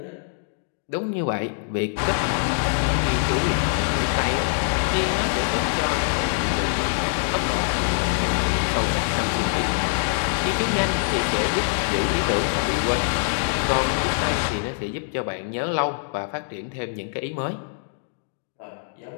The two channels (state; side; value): silent; right; digital silence